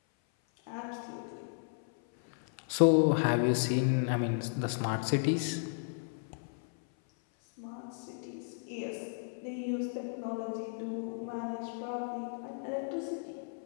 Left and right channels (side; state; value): right; silent; 55 dB below the other